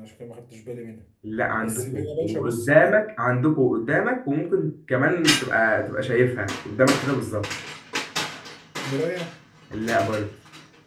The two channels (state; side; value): identical; both; correlation 1.00